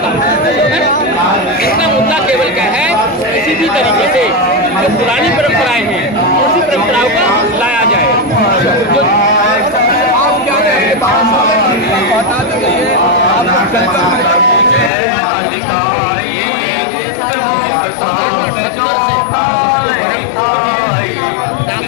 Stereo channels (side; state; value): right; drops out; at 14.9 s